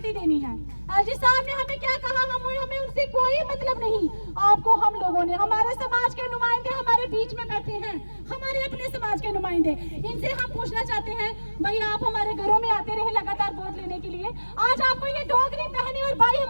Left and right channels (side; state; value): both; inverted; correlation -1.00